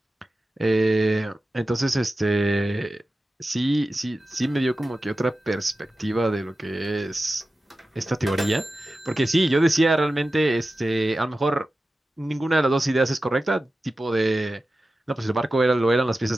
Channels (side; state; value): both; normal; correlation 0.94